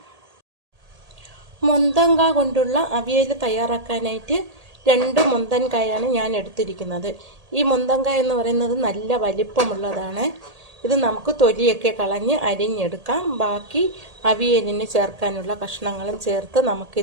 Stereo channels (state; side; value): late; left; 1.8 ms